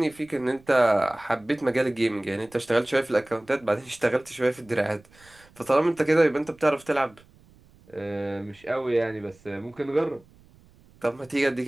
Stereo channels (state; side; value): noise; right; rumble, 28 dB below the sound